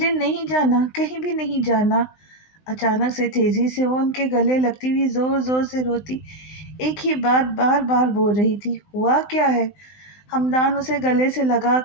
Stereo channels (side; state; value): right; late; 19 ms